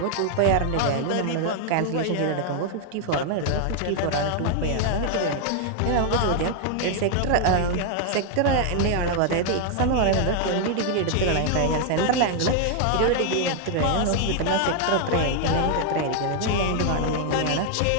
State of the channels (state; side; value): different; both; correlation 0.00